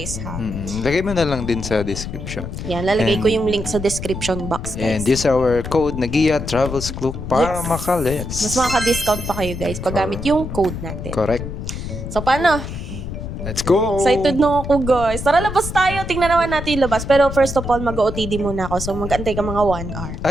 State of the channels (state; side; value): noise; left; rumble, 7 dB below the sound